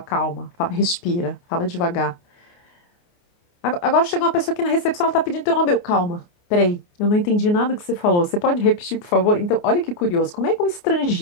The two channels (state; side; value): late; right; 29 ms